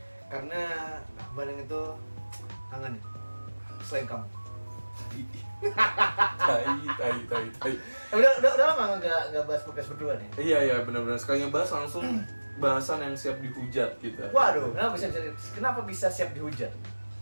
Karena Bandung itu kangen selain kamu. Tai. Udah lama nggak bahas podcast berdua nih. Iya, benar-benar. Sekali ngebahas langsung bahasan yang siap dihujat kita. Waduh, kenapa bisa siap dihujat?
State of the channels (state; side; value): inverted; both; correlation -1.00